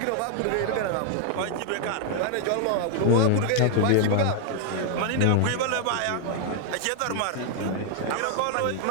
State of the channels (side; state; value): both; different; correlation 0.00